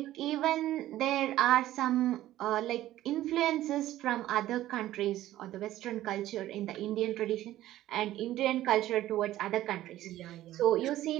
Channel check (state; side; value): quieter; left; 14.3 dB